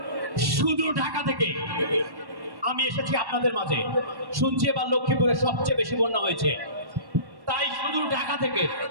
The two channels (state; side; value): late; left; 1.1 ms